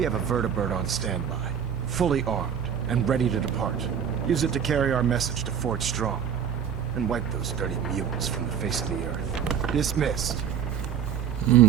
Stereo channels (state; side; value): quieter; left; 8.1 dB